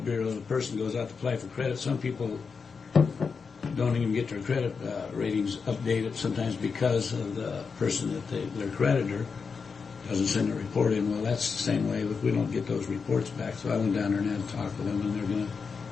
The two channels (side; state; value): right; quieter; 5.4 dB